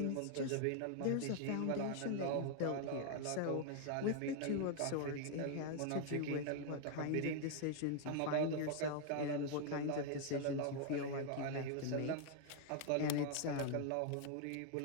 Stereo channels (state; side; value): different; both; correlation 0.00